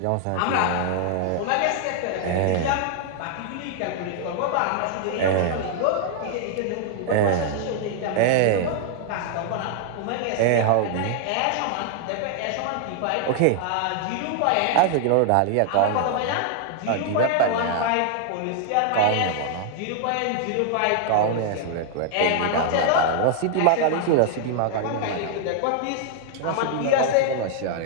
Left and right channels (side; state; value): both; different; correlation 0.00